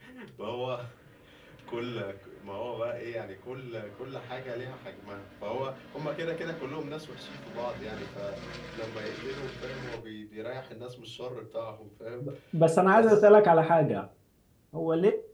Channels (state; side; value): identical; both; correlation 1.00